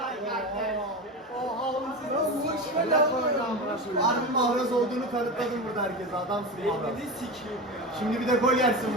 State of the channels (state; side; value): normal; both; correlation 0.24